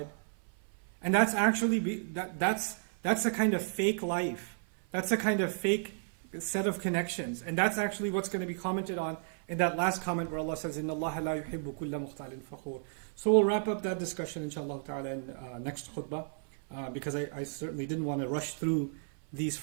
And that's actually, that's a kind of fake life. That's a kind of fake set of connections. And that's actually what's going to be commented on in that last comment where Allah says, إِنَّ اللَّهَ لَا يُحِبُّ كُلَّ مُخْتَالٍ فَخُورٍ. So we'll wrap up that discussion, inshallah ta'ala, in next khutbah, because I certainly didn't want to rush through these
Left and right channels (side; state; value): left; silent; 56 dB below the other